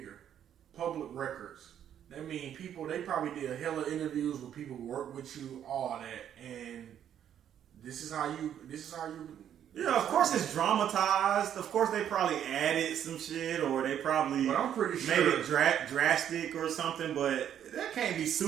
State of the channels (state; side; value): quieter; left; 9.8 dB